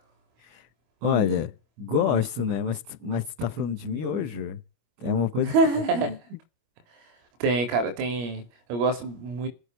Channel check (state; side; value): late; left; 25 ms